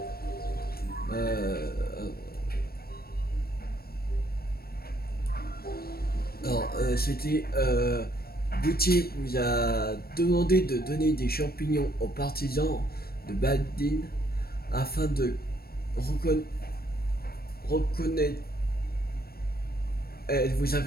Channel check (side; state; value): right; late; 0.44 ms